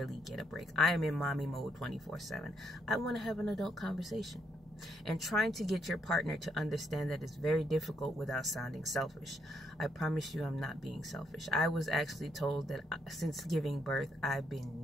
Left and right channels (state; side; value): normal; both; correlation 0.75